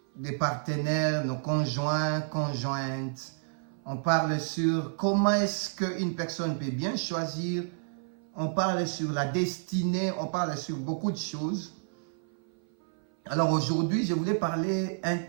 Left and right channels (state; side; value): silent; left; 56 dB below the other